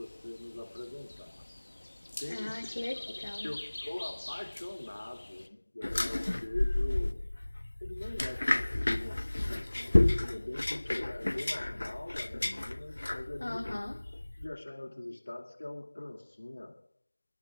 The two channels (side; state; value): both; inverted; correlation -1.00